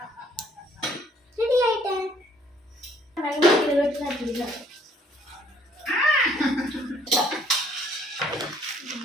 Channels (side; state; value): both; normal; correlation 0.63